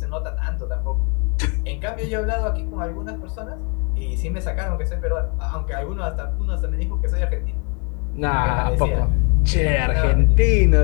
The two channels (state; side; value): quieter; right; 33.7 dB